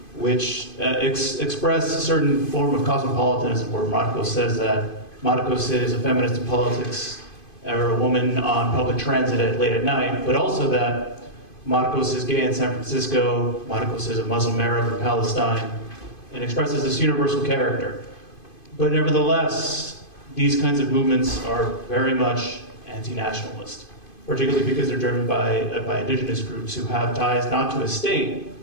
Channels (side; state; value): right; late; 2.5 ms